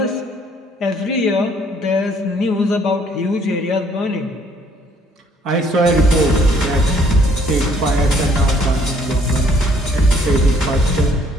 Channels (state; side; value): normal; both; correlation 0.63